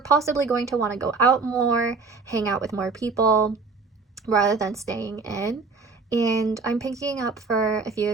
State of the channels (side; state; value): left; quieter; 4.4 dB